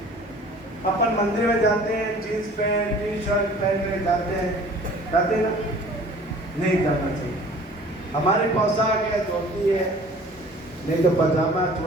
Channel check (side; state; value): both; normal; correlation 0.48